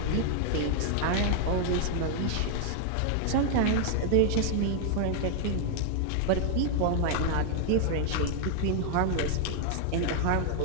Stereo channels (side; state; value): both; different; correlation 0.00